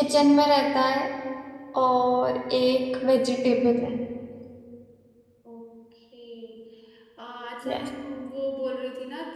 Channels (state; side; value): identical; both; correlation 1.00